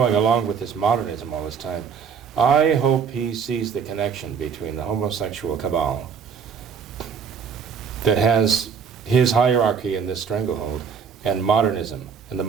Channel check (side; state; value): left; quieter; 6.5 dB